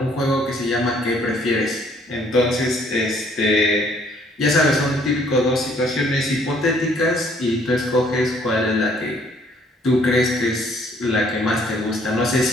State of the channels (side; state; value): both; normal; correlation 0.63